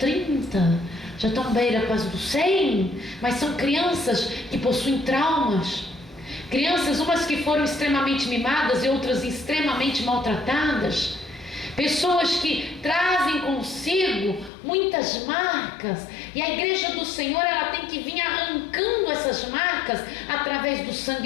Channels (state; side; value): drops out; right; at 14.5 s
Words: já estão beira quase dos 100, mas são crianças que possuem traumas, crianças umas que foram extremamente mimadas e outras extremamente maltratadas, pessoas que trazem consigo muitas marcas, e a igreja do Senhor, ela tem que vir arrancando essas marcas através do